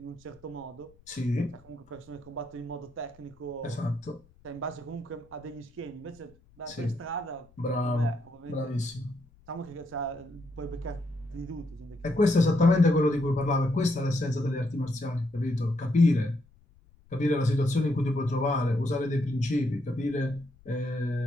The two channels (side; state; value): left; noise; rumble, 28 dB below the sound